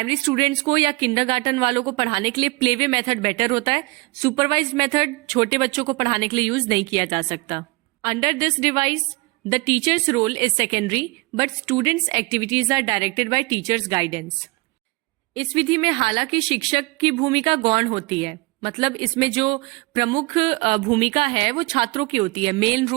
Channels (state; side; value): quieter; left; 25.0 dB